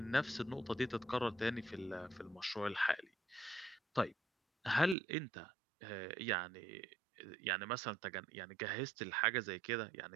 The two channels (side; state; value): left; drops out; at 5.0 s